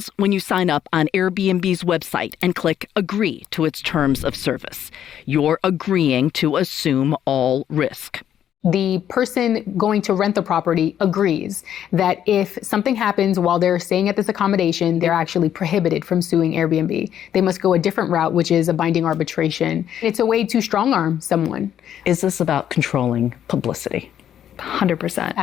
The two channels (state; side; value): quieter; right; 10.1 dB